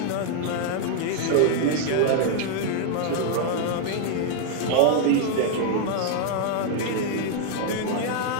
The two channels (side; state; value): both; different; correlation 0.00